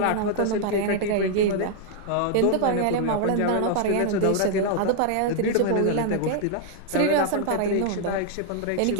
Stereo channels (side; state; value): both; different; correlation 0.00